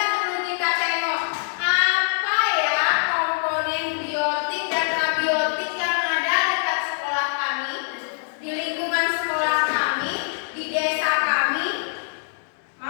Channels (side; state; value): right; silent; digital silence